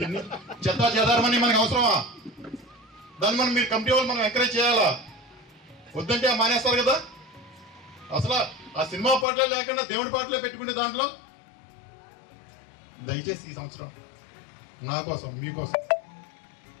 చెదారమని మనకి అవసరమా? దాన్ని మీరు కమిటీ వాళ్ళు మనం ఎంకరేజ్ చేయాలా? వద్దంటే మానేస్తారు కదా. అసలు ఆ సినిమా పాటలే లేకుండా దేవుడి పాటలే పెట్టుకునే దాంట్లో దయచేసి ఈ సంవత్సరం నా కోసం మీకోసం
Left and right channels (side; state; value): right; drops out; at 9.2 s